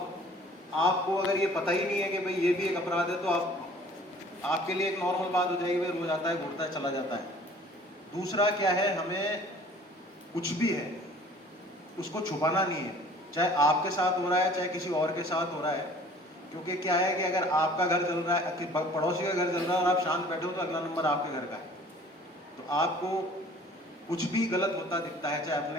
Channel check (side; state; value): both; normal; correlation 0.51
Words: आपको अगर ये पता ही नहीं है कि भाई ये भी एक अपराध है, तो आपके लिए एक नॉर्मल बात हो जाएगी, भाई रोज आता है, घूरता है, चला जाता है। दूसरा क्या है, हमें कुछ भी है उसको छुपाना नहीं है, चाहे आपके साथ हो रहा है, चाहे किसी और के साथ हो रहा है। क्योंकि क्या है कि अगर आपका घर जल रहा है, पड़ोसी का घर जल रहा है और आप शांत बैठे हो, तो अगला नंबर आपके घर का है। तो आपको कुछ भी गलत होता दिखता है, चाहे